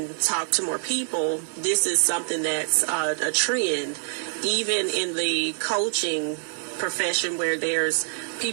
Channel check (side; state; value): left; silent; digital silence